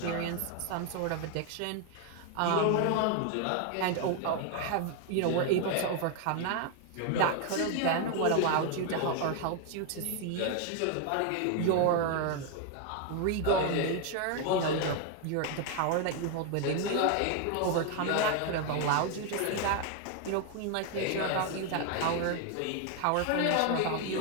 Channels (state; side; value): different; both; correlation 0.01